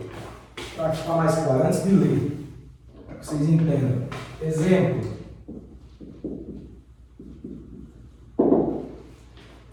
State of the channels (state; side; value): identical; both; correlation 1.00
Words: para ficar mais claro antes de ler, para que vocês entendam. Exemplo.